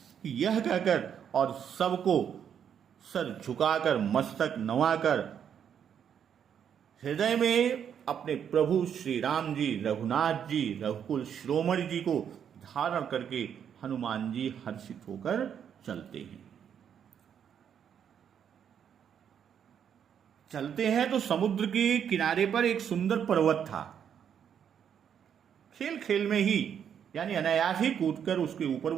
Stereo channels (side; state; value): left; quieter; 8.4 dB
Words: कि यह कहकर और सबको सर झुकाकर, मस्तक नवाकर, हृदय में अपने प्रभु श्री राम जी, रघुनाथ जी, रघुकुल शिरोमणि जी को धारण करके हनुमान जी हर्षित होकर चलते हैं। चलते हैं तो समुद्र के किनारे पर एक सुंदर पर्वत था। खेल खेल में ही, यानी अनायास ही कूदकर उसके ऊपर